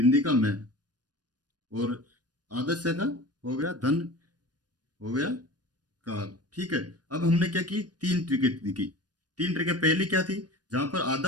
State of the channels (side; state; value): left; late; 0.69 ms